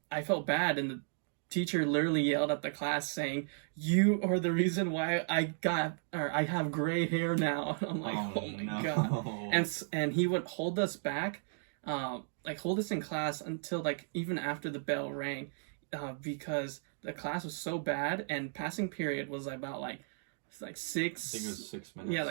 I felt bad, and the teacher literally yelled at the class saying, "You are the reason why I have gray hair now." I'm like, oh my no. God. And he would hold us back, like hold us in class until like even after the bell rang, because the class was so bad, and passing period was about like 6. I think it was 6 minutes. Yeah,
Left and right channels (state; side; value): silent; left; digital silence